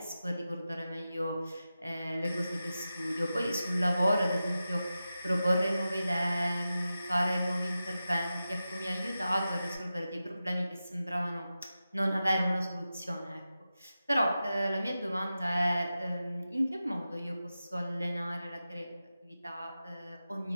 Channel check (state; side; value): inverted; both; correlation -0.92